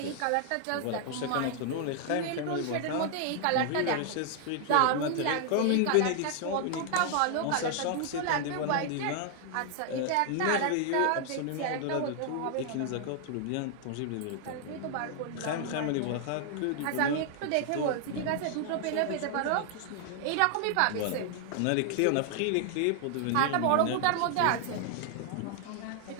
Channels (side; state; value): both; different; correlation 0.00